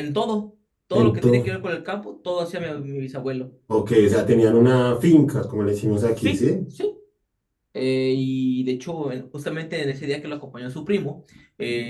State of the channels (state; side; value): identical; both; correlation 1.00